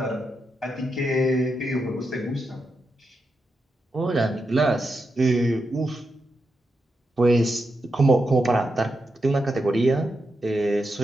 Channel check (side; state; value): both; normal; correlation 0.86